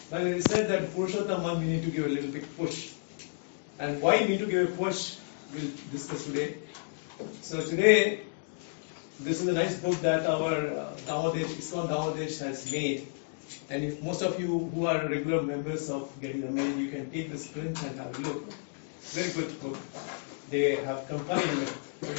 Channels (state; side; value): silent; right; digital silence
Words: But it is said that Purushottam month we need to give a little big push. And why we need to give a push, we'll discuss today. So today, this is a nice book that our ISKCON Damadesh has made. And if most of you who are regular members of Getting the Mail, you can take this print and have a look. Very good book. They have compiled